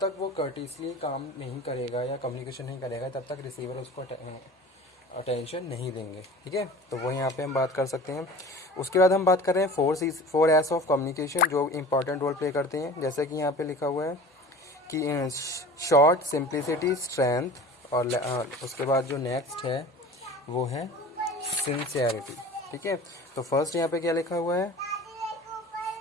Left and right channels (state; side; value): normal; both; correlation 0.39